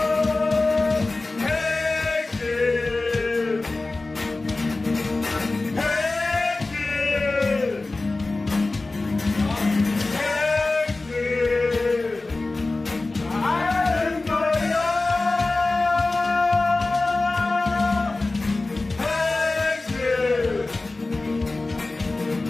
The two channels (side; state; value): right; quieter; 3.3 dB